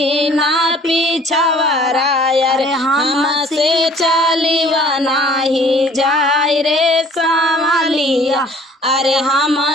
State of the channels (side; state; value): both; normal; correlation 0.53